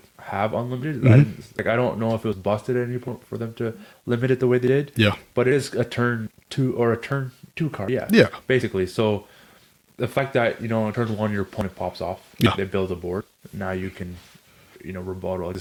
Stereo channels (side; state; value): both; identical; correlation 1.00